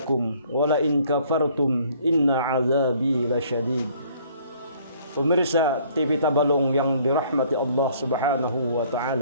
wa la in kafartum inna azabi lasyadid. Pemirsa TV Tabalong yang dirahmati Allah Subhanahu wa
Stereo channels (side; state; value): both; inverted; correlation -0.59